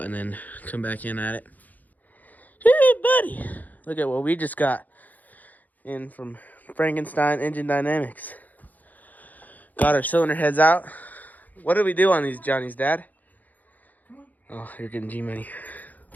and then come back in at it. Hey, buddy, look at what we just got in from Frankenstein Engine Dynamics. Got our cylinder heads out, What did we do on these Johnny's, Dad? Oh, you're getting G-Money.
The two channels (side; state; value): right; late; 0.081 ms